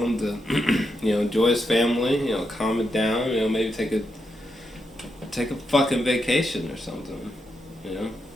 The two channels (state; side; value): normal; both; correlation 0.84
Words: to, enjoy his family, calm it down, maybe take a fucking vacation or something,